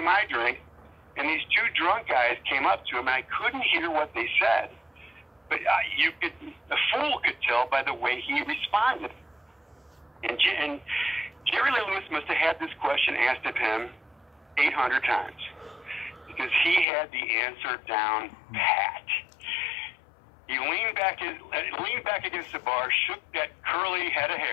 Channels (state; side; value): drops out; right; at 16.9 s